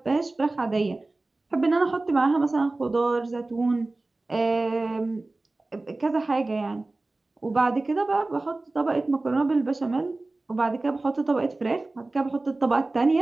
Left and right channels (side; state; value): left; quieter; 3.1 dB